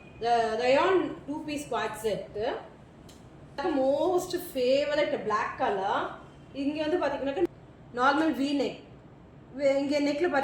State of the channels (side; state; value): both; identical; correlation 1.00